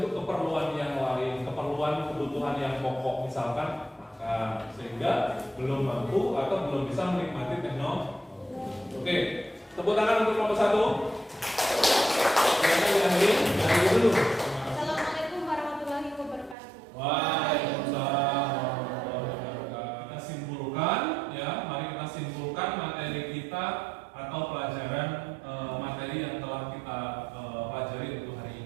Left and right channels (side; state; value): left; drops out; at 16.6 s